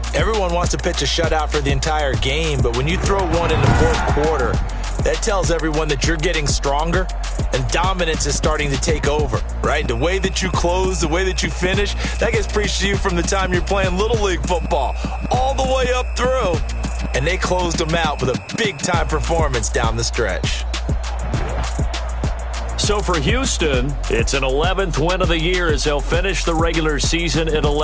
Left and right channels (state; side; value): identical; both; correlation 1.00